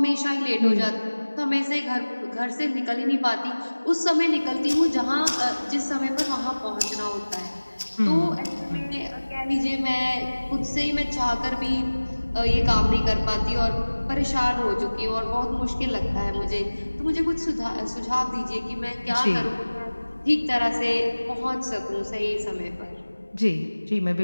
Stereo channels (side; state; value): both; inverted; correlation -1.00